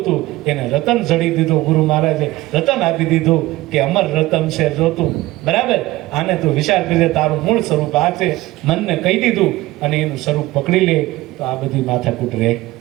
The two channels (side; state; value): left; quieter; 18.3 dB